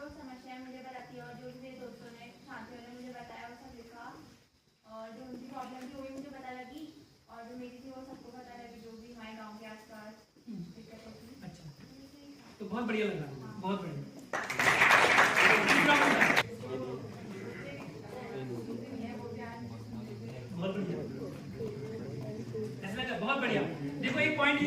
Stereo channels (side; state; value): both; identical; correlation 1.00